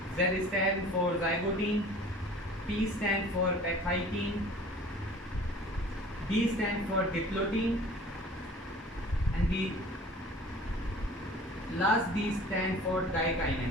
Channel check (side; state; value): both; normal; correlation 0.46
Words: Z stands for zygotin, P stands for pachytin, D stands for diplotin, and the last D stands for